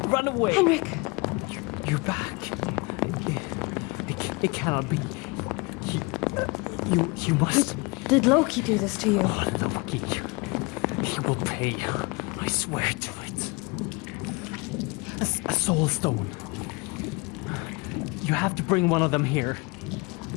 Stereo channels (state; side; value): quieter; right; 27.6 dB